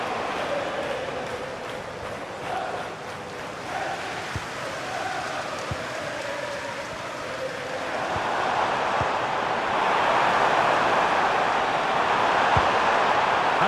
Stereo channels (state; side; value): identical; both; correlation 1.00